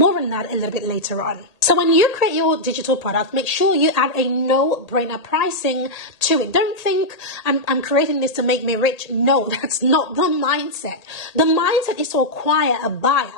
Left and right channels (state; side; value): late; right; 1.8 ms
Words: on that a little bit later on. So when you create your digital product, make sure you add a no-brainer pricing to it. Don't think I'm creating this to make me rich. No, that's not the mindset. The mindset is to acquire a buyer.